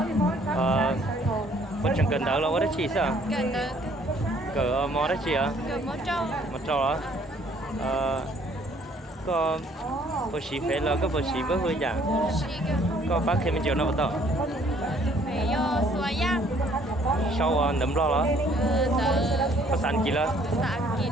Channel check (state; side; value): normal; both; correlation 0.61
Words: Có chẳng cần đỡ đâu, có đấy chị sao? Cần được. Cỡ mò đấy chị à? Cậu mó trâu. Mò trâu đó. Có bữa xí phê là có bữa xí bữa hư chả? Có bác thêm chiều nào bắt đầu? Phải yo xóa giang. Sau nấm lo đó. Có sẵn kì là? Sẵn kì.